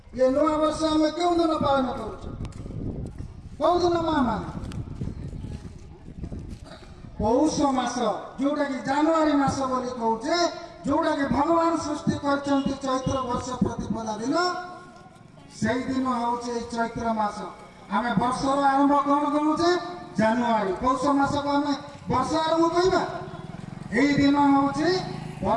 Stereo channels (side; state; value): both; identical; correlation 1.00